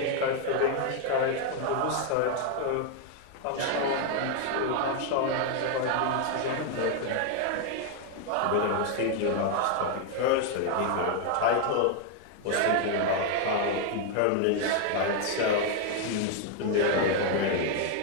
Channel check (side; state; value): both; different; correlation 0.00